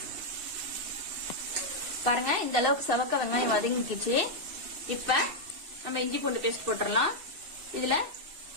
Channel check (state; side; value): late; left; 2.6 ms